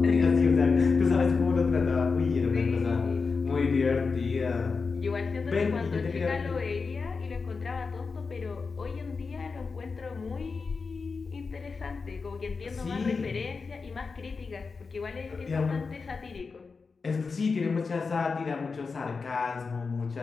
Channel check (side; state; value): right; quieter; 4.7 dB